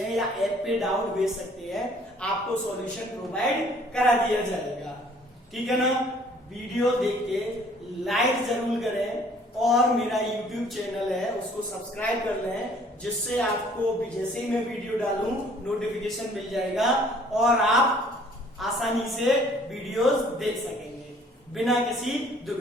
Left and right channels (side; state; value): both; normal; correlation 0.57